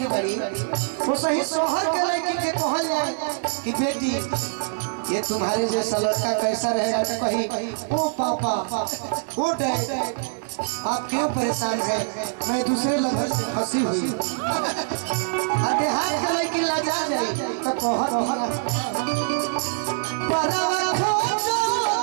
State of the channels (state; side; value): silent; left; digital silence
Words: बाड़ी वो सही शहर के लड़की के कहल जाए कि बेटी ये तुम्हारे जैसा लड़का कैसा रहेगा तो कही ओ पापा ओ डैड आप क्यों परेशान है, मैं दूसरे लड़के से फंसी हुई। देहात के लड़की लाजा जाए तो कहत